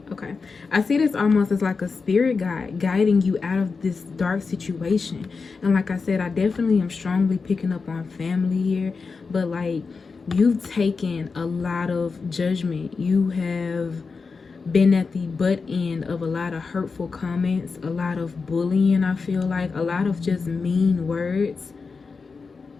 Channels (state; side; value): quieter; right; 4.7 dB